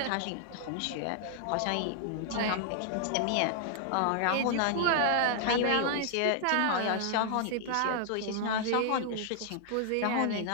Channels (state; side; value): different; both; correlation 0.00